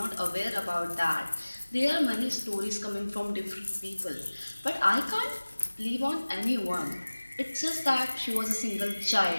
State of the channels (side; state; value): both; inverted; correlation -1.00